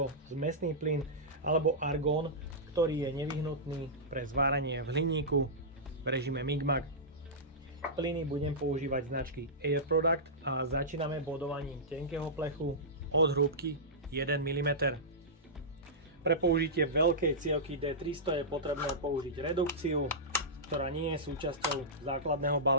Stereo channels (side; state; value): both; normal; correlation -0.14